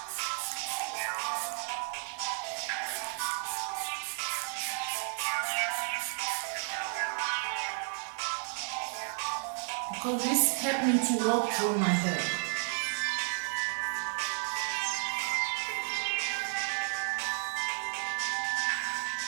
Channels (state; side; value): silent; left; 56 dB below the other